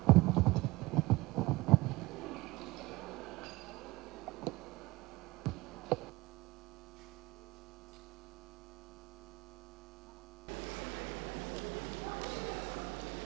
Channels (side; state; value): left; quieter; 21.0 dB